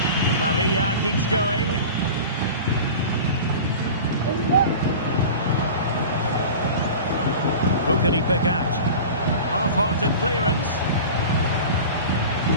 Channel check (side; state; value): both; inverted; correlation -0.35